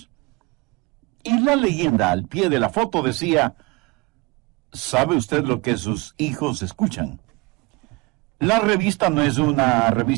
Y la leyenda al pie de la foto decía: ¿sabe usted lo que sus hijos escuchan? La revista no es una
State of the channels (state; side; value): quieter; left; 25.6 dB